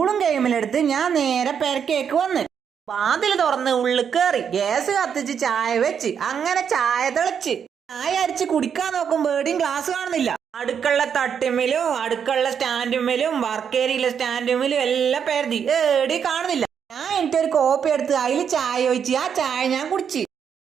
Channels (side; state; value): left; quieter; 7.6 dB